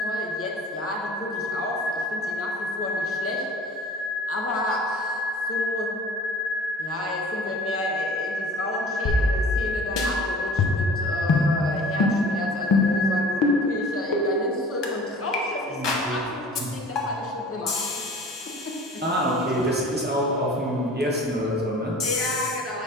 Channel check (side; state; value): both; normal; correlation 0.45